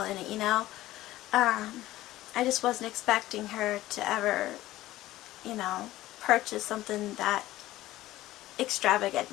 in it, you know. I just wasn't expecting her to ever, you know, purchase something that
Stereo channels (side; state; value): right; quieter; 16.0 dB